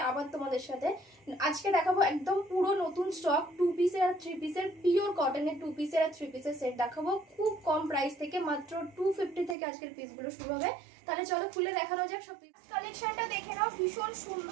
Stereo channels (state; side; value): drops out; left; at 9.6 s